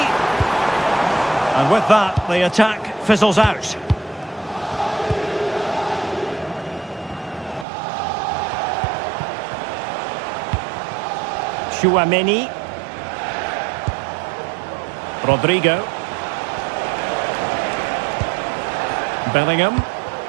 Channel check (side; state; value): left; drops out; at 7.7 s